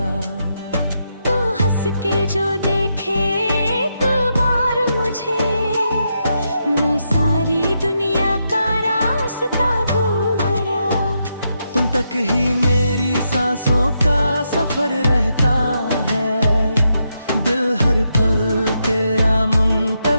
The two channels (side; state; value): both; inverted; correlation -0.82